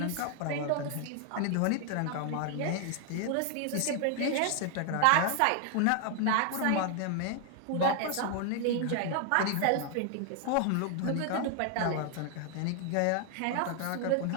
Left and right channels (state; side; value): different; both; correlation 0.00